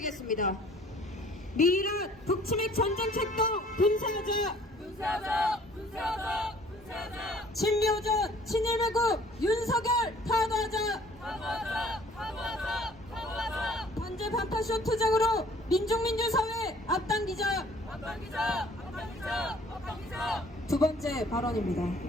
미란 북치맥 전쟁 책동 분사하자! 분사하자! 분사하자! 분사하자! 친미오전 친일매국 윤석열 파도하자! 파도하자! 파도하자! 파도하자! 반제 반파쇼 투쟁으로 민중민주사회 앞당기자! 앞당기자! 앞당기자! 앞당기자! 두 번째 발언입니다.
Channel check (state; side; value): normal; both; correlation 0.55